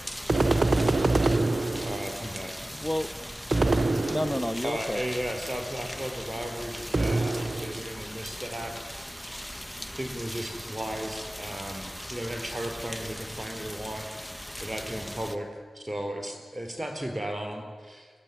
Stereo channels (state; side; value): normal; both; correlation 0.96